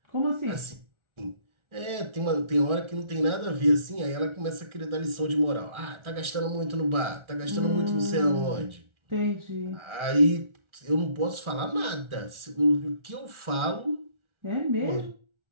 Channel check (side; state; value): left; late; 1.4 ms